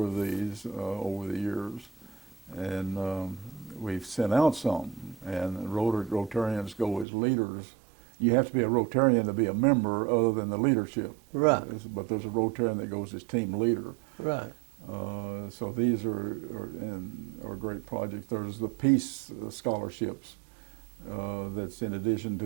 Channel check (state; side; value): drops out; left; at 7.1 s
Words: of these over the years, and we've sent out some, and Rotarians go as leaders. You have to be a Rotarian to be a member other than the leadership. Right. But there's a Rotarian that goes as team leader. Right. So these are great projects. There's the Peace Scholarships that's in addition